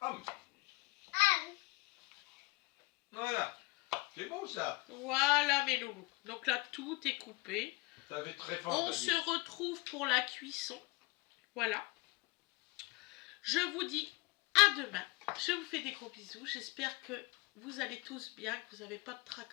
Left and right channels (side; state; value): right; quieter; 24.8 dB